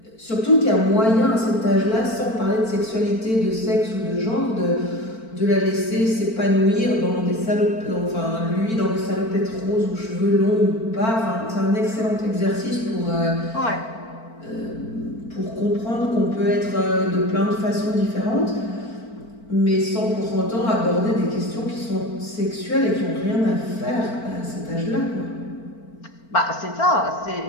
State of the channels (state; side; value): late; right; 4.5 ms